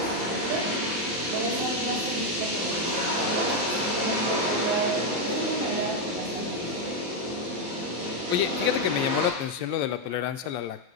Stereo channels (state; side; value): late; left; 23 ms